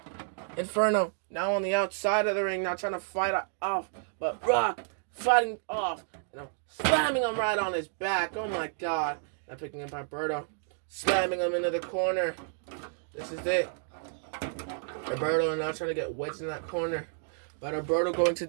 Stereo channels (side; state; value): left; silent; digital silence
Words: Inferno now on the outside of the ring. Now trying to fight off. But Rock fighting off. Slamming him right on his back. Oh my god. Now picking up Alberto. Slamming him into the corner. This is it. Alberto now trying to get wedged in that corner. But Alberto going to